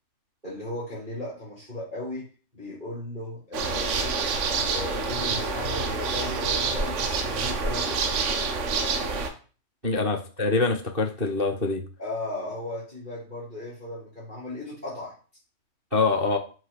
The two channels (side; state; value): left; late; 3.5 ms